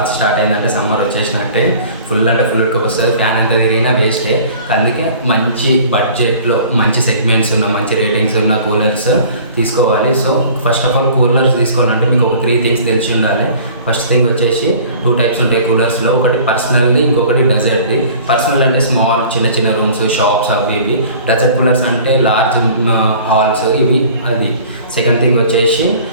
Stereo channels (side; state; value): both; inverted; correlation -0.47